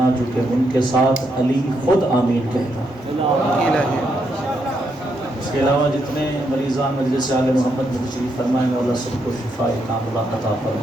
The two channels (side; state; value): both; normal; correlation 0.79